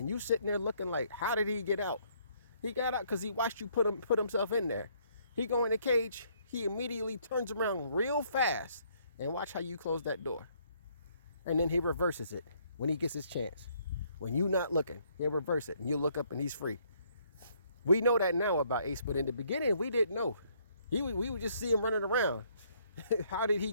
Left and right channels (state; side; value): inverted; both; correlation -0.67